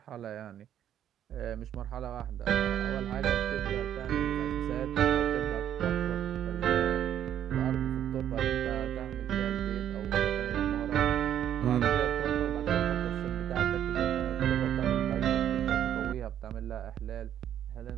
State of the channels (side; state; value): left; quieter; 10.4 dB